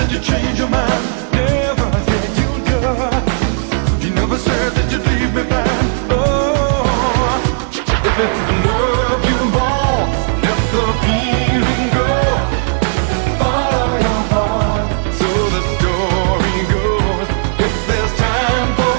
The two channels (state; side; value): silent; left; digital silence